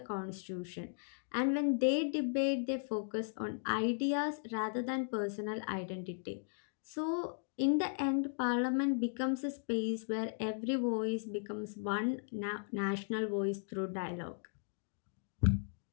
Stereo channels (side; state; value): right; silent; digital silence